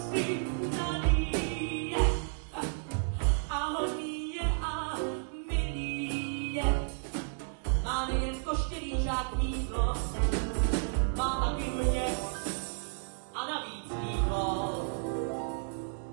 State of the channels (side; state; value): left; silent; 56 dB below the other